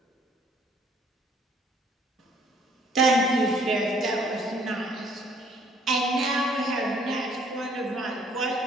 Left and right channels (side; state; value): both; normal; correlation 0.61